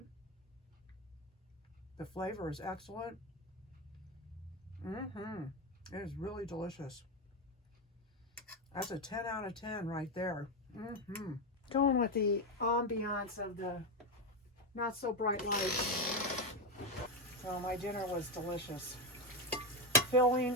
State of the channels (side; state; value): both; normal; correlation 0.09